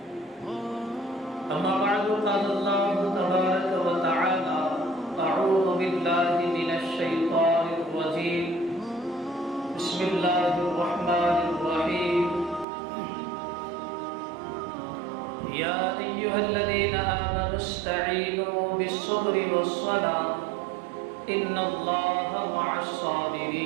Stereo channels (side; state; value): left; drops out; at 12.7 s